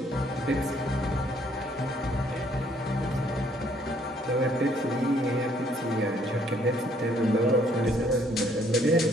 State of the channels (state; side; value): normal; both; correlation 0.65